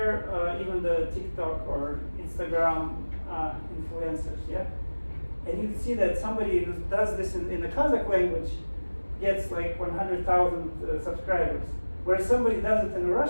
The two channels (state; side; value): inverted; both; correlation -1.00